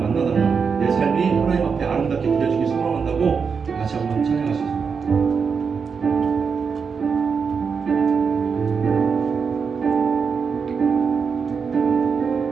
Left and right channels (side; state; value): left; quieter; 5.8 dB